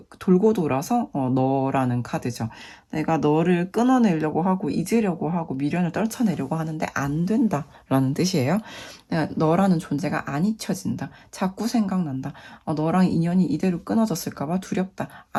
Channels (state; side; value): identical; both; correlation 1.00